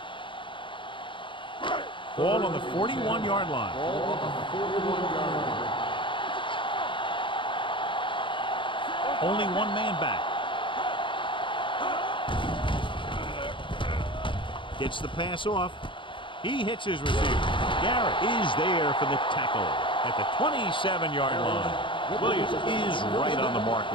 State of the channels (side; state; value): right; late; 0.24 ms